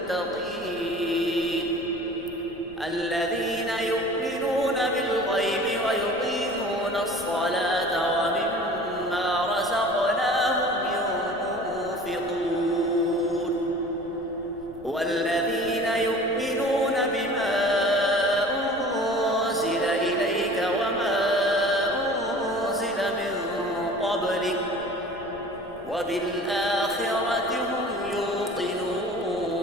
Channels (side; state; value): left; noise; rumble, 22 dB below the sound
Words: الذين يؤمنون بالغيب ويقيمون الصلاة ومما رزقناهم ينفقون والذين يؤمنون بما أنزل إليك وما أنزل من قبلك وبالآخرة هم يوقنون